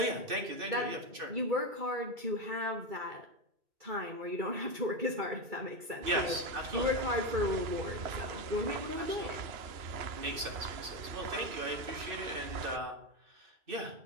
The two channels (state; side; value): late; left; 2.6 ms